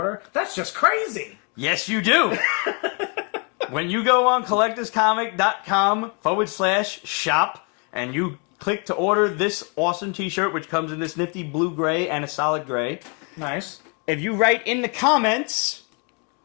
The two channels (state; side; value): quieter; right; 35.6 dB